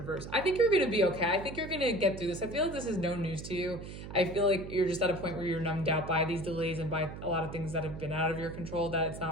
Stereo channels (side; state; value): right; noise; hum, 11 dB below the sound